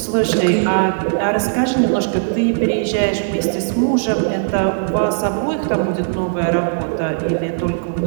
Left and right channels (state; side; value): silent; left; digital silence